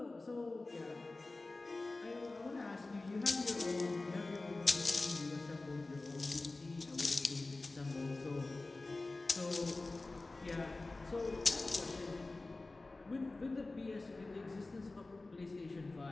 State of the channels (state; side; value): quieter; right; 3.2 dB